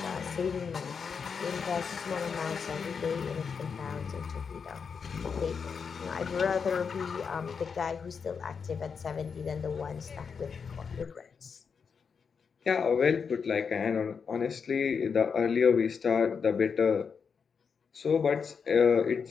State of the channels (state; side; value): quieter; right; 6.0 dB